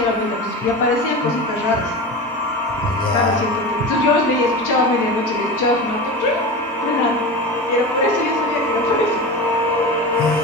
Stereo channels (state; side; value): normal; both; correlation 0.27